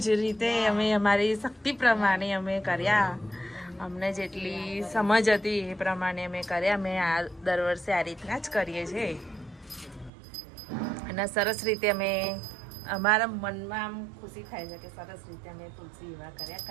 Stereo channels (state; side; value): drops out; left; at 10.1 s